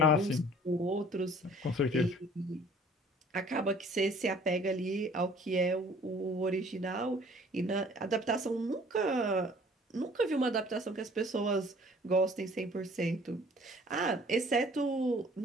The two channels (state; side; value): normal; both; correlation 0.53